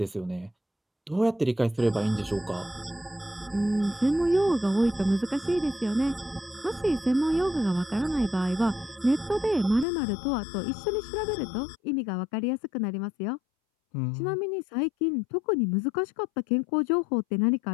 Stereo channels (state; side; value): drops out; right; at 9.9 s